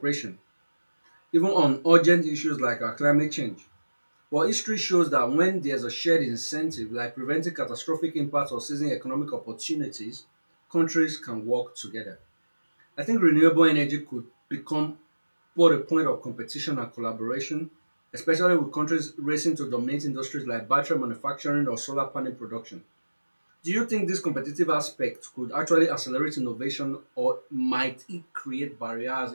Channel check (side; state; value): both; inverted; correlation -1.00